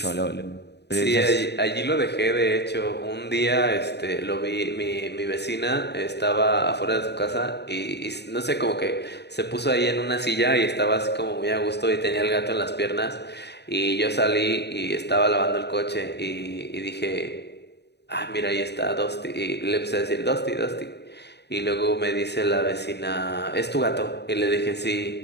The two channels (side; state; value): right; late; 0.49 ms